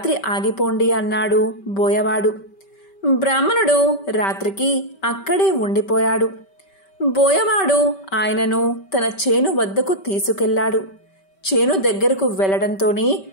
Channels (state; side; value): late; right; 5.2 ms